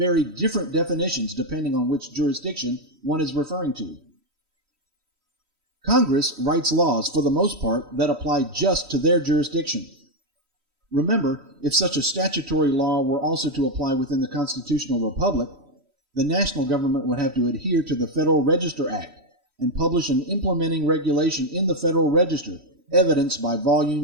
different definitions depending on which jurisdiction one is referring to. Congress writes laws, for the most part, that apply just to their jurisdiction. Remember, if such a statutory law were also to apply within the constitutional republic, the national government would have to adhere to the Federal Register Act and publish an implementing regulation in the Federal Register, evidenced by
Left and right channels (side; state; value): left; late; 3.1 ms